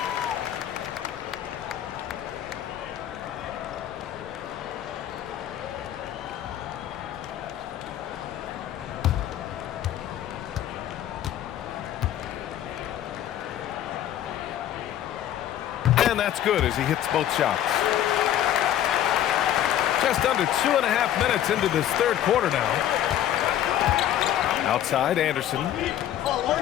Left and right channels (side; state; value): right; quieter; 11.5 dB